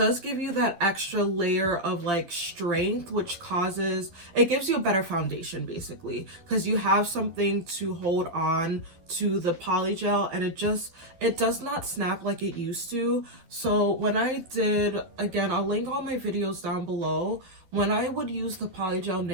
extra layer of like strength, which it gives you a better foundation basically, because you have something to hold on to the polygel, and it does not snap like it used to. So when I did, again, I'll link all my videos down below, when I would use the polygel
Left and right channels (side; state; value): left; late; 12 ms